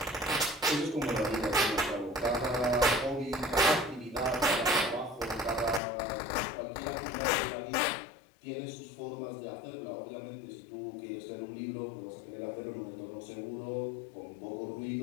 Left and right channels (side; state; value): right; drops out; at 5.8 s